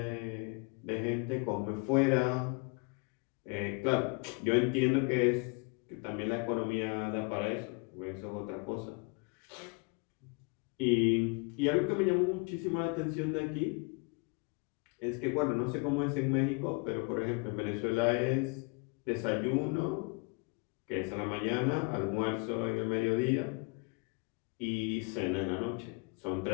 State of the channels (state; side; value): quieter; right; 33.2 dB